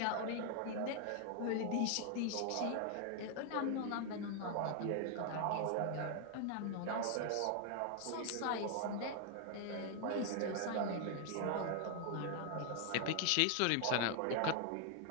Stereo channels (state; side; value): different; both; correlation 0.00